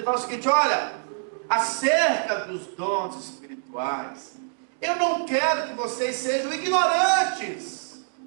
fala o seguinte: olha, acerca dos dons espirituais, eu não quero que vocês sejam ignorantes.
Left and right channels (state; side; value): silent; left; digital silence